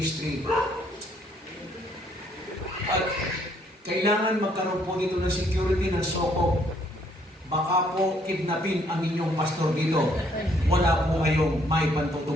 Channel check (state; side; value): normal; both; correlation 0.67